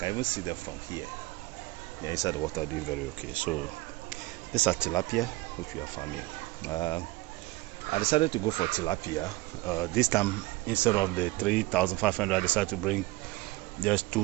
even see them from here. They're inside the water doing very okay. So these are tilapia, which we are farming. I decided to go for tilapia. This time, instead of the 3,500, I decided to bring just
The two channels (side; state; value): left; quieter; 20.0 dB